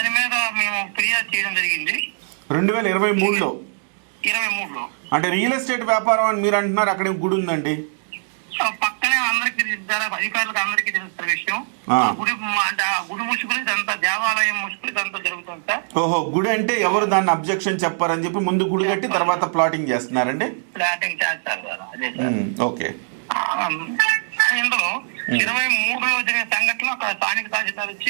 మీద మేము ఫిర్యాదు చేయడం జరిగింది 2023లో. అంటే రియల్ ఎస్టేట్ వ్యాపారం అని మీరు అంటున్నారు, అక్కడ గుడి ఉందండి పక్కనే అందరికి అధికారులకు అందరికీ తెలుస్తున్న విషయం. ఆ గుడి అంటే ఆ గుడి ముసుగులు ఇదంతా దేవాలయం ముసుగులు ఇదంతా జరుగుతుంది సార్. ఓహో, గుడి అంటే ఎవరు దాన్ని అబ్జెక్షన్ చెప్పారని చెప్పి ముందు గుడి కట్టి తర్వాత ప్లాటింగ్ చేస్తున్నారండి. ప్లాటింగ్ చేస్తారు సార్. అదే సార్. ఓకే. ఇందులో 23లో జరిగిన సంఘటనలో అక్కడ స్థానిక తహసీల్దార్ వచ్చి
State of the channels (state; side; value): silent; left; 64 dB below the other